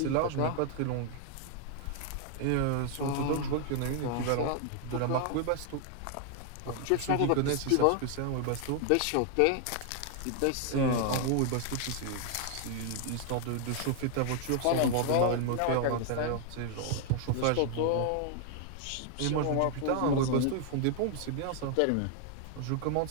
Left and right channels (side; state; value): both; different; correlation 0.00